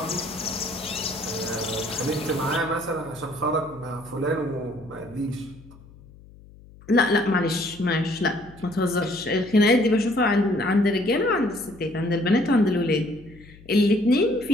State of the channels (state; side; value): noise; left; hum, 22 dB below the sound